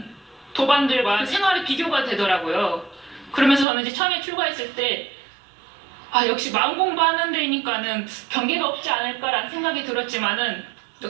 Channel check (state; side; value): drops out; left; at 3.7 s